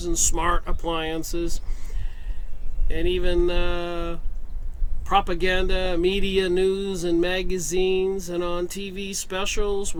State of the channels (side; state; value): both; identical; correlation 1.00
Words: and smart appliances, and even propaganda, media, news, and magazines, and on TV specials